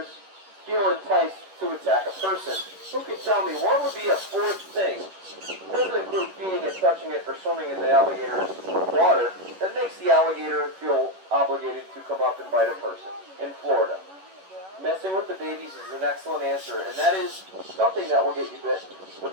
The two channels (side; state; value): left; late; 11 ms